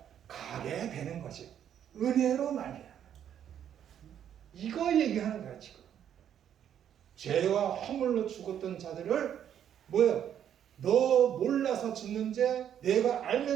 가게 되는 거지. 은혜로 말이야. 이거 얘기하는 거야 지금. 죄와 허물로 죽었던 자들을 뭐예요? 너 몰라서 짓는 죄, 내가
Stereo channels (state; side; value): quieter; left; 9.6 dB